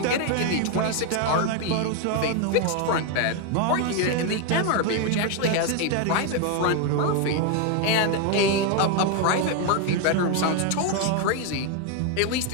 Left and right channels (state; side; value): different; both; correlation 0.01